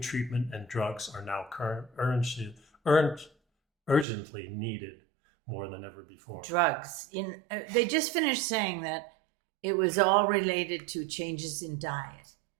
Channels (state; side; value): drops out; left; at 4.0 s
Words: and drugs are now urgently needed more than ever before. Drugs. They just finished saying that it was all related to changes in diet.